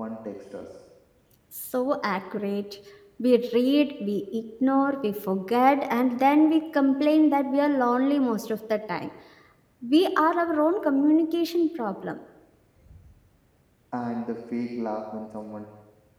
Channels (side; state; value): both; identical; correlation 1.00